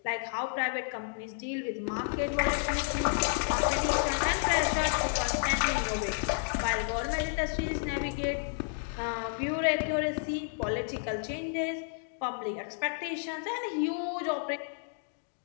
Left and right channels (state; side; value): silent; right; digital silence